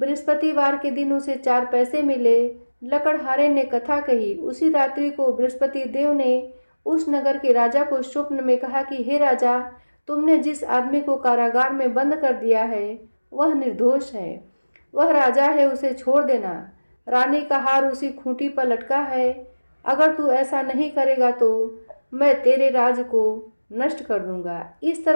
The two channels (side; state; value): both; inverted; correlation -1.00